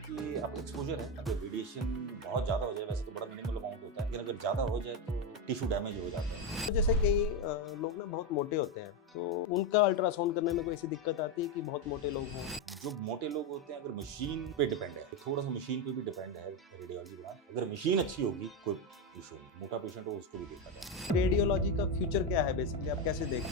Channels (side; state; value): both; normal; correlation 0.10